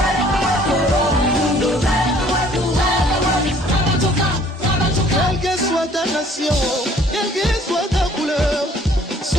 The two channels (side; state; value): both; normal; correlation 0.57